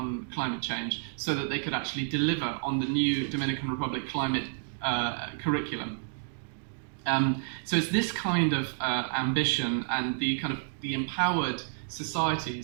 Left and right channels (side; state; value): left; silent; digital silence